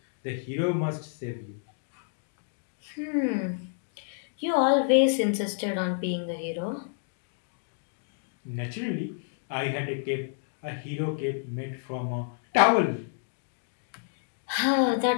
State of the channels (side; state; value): right; silent; digital silence